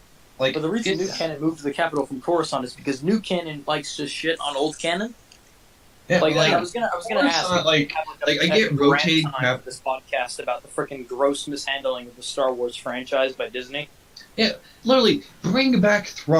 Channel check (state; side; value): identical; both; correlation 1.00